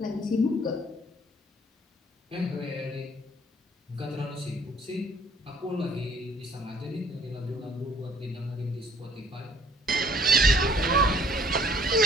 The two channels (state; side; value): normal; both; correlation 0.60